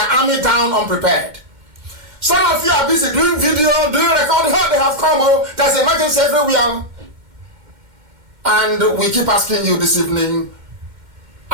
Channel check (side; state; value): left; late; 2.2 ms